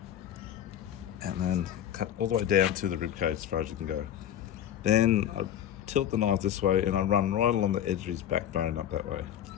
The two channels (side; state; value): right; quieter; 10.5 dB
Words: and then cut all the way down to the rib cage as far as you can go. Then I tilt the knife this way and I run right along the edge of his backbone up that way.